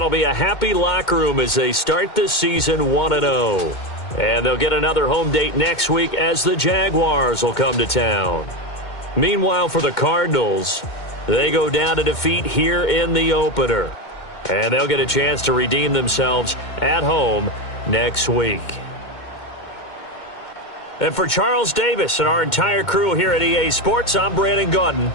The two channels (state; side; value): late; right; 2.2 ms